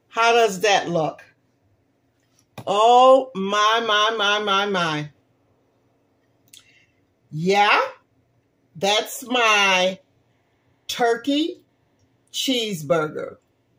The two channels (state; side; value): identical; both; correlation 1.00